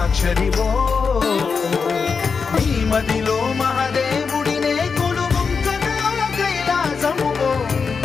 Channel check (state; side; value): quieter; right; 5.4 dB